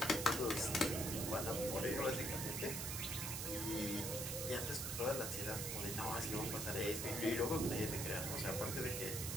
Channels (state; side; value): noise; right; hiss, 3 dB below the sound